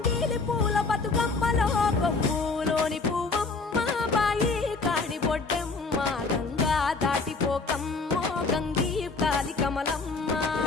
పూల బతుకమ్మలో కొమ్ములోని పువ్వమ్మ బాయి కాడి బొడ్డెమ్మ గంగా దాటిపోకమ్మో గంగీ తాలి కమలమ్మ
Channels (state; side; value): quieter; right; 4.0 dB